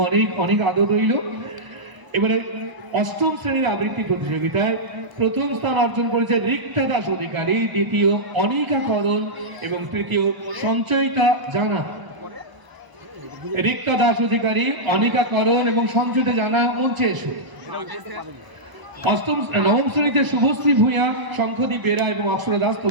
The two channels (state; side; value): late; left; 1.0 ms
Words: অনেক অনেক আদর রইল। এবারে অষ্টম শ্রেণীর আবৃত্তি প্রতিযোগিতায় প্রথম স্থান অর্জন করেছে রিক্তা দাস অধিকারী, দ্বিতীয় অনিকা করণ এবং তৃতীয় সঞ্চয়িতা জানা। রিক্তা দাস অধিকারী, অনিকা করণ এবং সঞ্চয়িতা জানা মঞ্চে এসো। নবম শ্রেণীতে শুভশ্রী ভূঁইয়া, শঙ্খদীপ বেরা এবং অক্ষরা দাস,